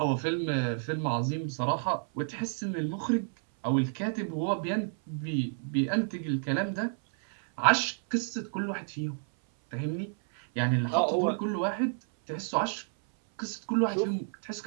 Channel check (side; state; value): left; silent; 58 dB below the other